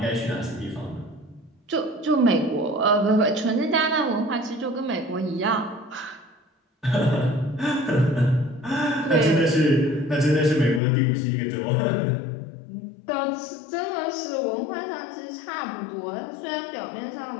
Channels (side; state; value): right; drops out; at 10.8 s